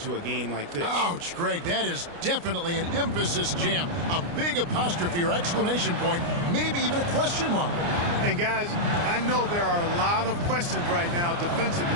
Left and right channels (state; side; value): late; left; 29 ms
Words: a game like this. Ouch, Greg, that is definitely an emphasis jam. A big apostrophe or exclamation point, maybe even a question mark. And guys, I know there are a lot of questions right now